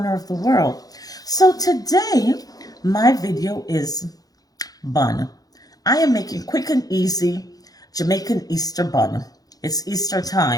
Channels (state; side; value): late; right; 0.18 ms